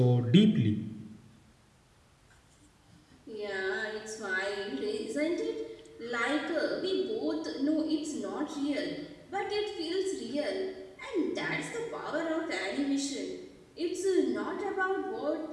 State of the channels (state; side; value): identical; both; correlation 1.00